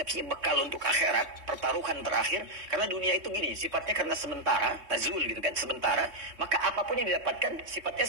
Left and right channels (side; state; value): left; late; 3.2 ms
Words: bekal untuk akhirat, pertaruhan terakhir. Karena dunia itu gini, sifatnya karena sementara, tazul gitu kan, sementara. Maka apapun yang didapatkan,